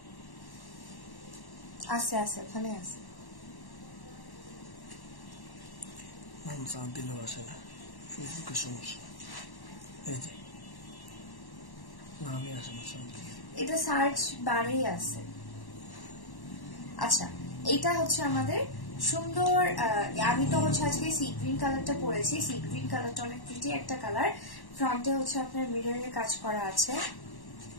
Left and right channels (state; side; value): late; right; 1.1 ms